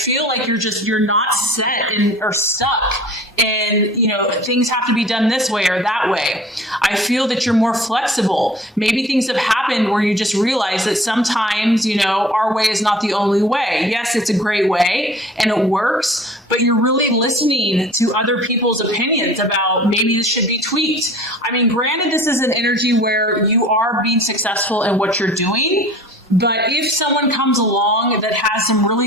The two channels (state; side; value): normal; both; correlation 0.46